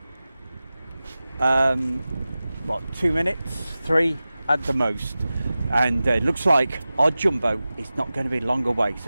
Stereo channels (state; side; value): inverted; both; correlation -0.96